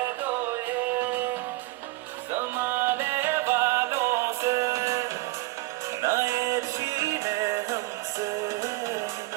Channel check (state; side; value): quieter; left; 20.4 dB